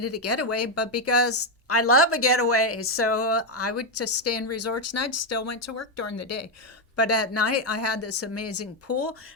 a getaway, but because I love a getaway. So I would just stay in resorts, and I still went to work during the day. But at night, I had this amazing pool.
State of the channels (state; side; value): normal; both; correlation 0.04